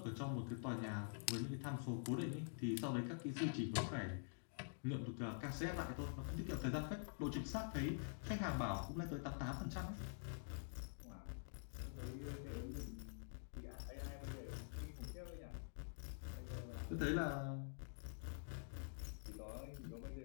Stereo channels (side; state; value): right; silent; digital silence